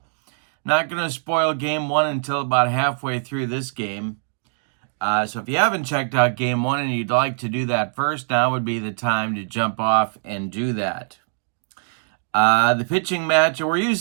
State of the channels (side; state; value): left; silent; digital silence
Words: Not going to spoil game 1 until about halfway through this game. So if you haven't checked out game 1 and you'd like to do that first, now would be the time to jump off and do that. The pitching match, we're